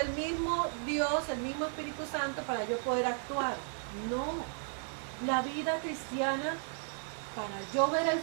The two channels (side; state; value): left; silent; 55 dB below the other